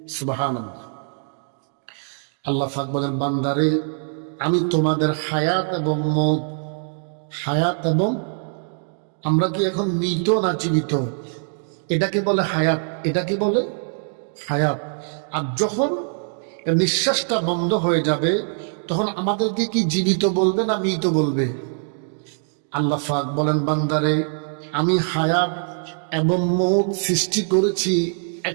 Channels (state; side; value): silent; left; digital silence